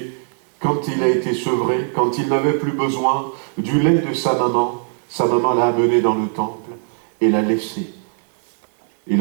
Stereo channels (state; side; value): silent; left; 63 dB below the other